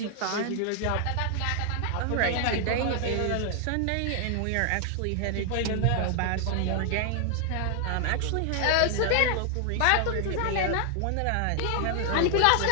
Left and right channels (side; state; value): both; different; correlation 0.00